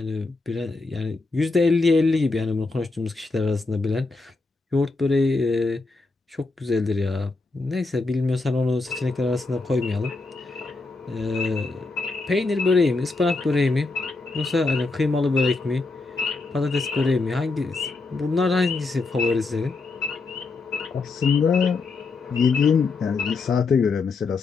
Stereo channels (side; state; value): right; quieter; 3.7 dB